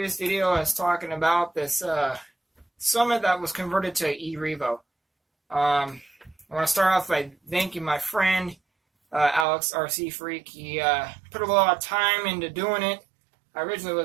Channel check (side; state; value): left; drops out; at 9.5 s